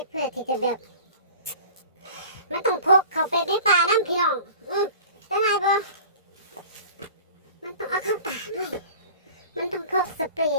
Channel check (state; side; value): inverted; both; correlation -0.41